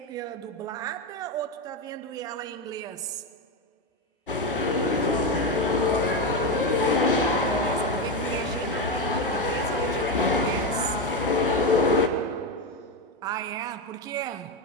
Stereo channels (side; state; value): both; normal; correlation 0.12